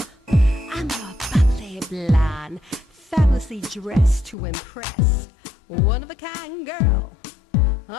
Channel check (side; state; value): right; drops out; at 4.4 s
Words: I'm your bubbly blonde, fabulously dressed to impress. One of a kind girl.